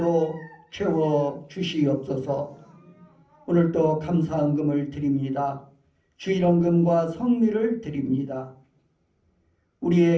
채워 주시옵소서. 오늘도 감사헌금을 드립니다. 주일헌금과 성미를 드립니다.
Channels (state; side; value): identical; both; correlation 1.00